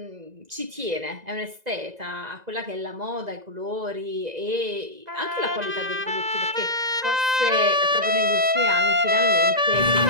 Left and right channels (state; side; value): late; left; 2.0 ms